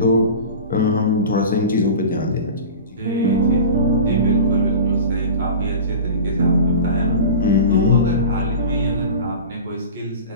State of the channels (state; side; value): inverted; both; correlation -0.34